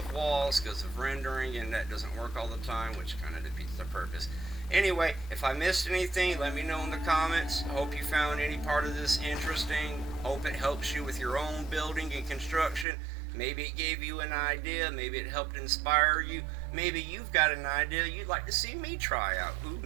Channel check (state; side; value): drops out; left; at 12.9 s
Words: walls because of rendering, and that doesn't work all the time, which kind of defeats the purpose. Anyway, if I missed anything, let me know in the comments. Hope you found any part of this interesting. Hope it helps you with your own building and construction. Maybe it gave you an idea. Maybe it helped inspire you. Maybe you've got an idea you'd like to see me try out. Who